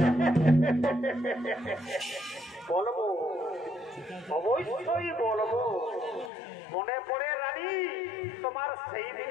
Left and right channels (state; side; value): drops out; right; at 6.3 s